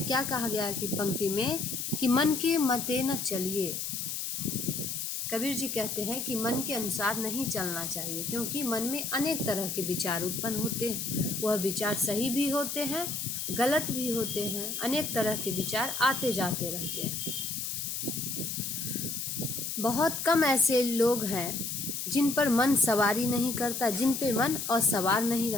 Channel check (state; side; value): noise; left; hiss, 3 dB below the sound